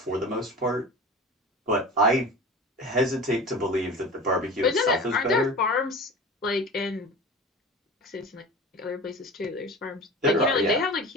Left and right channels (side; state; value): both; normal; correlation 0.34